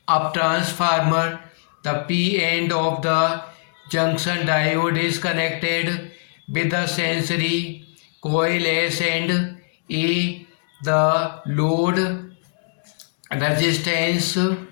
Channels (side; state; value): right; silent; 64 dB below the other